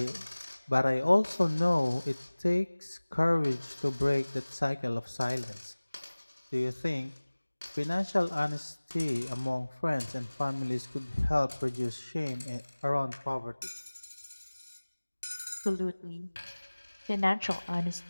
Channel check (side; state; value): both; inverted; correlation -1.00